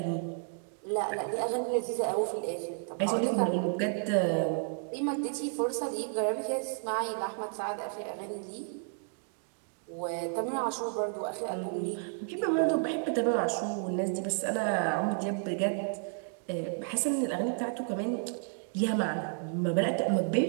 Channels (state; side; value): silent; left; 56 dB below the other